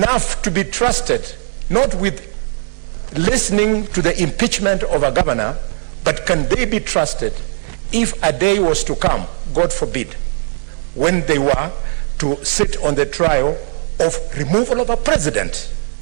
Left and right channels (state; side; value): silent; left; digital silence